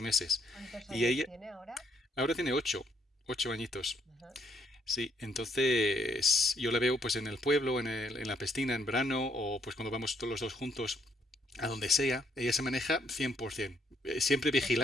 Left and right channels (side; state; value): both; normal; correlation 0.70